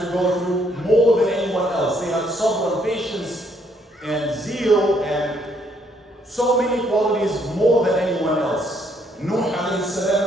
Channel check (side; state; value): both; normal; correlation 0.69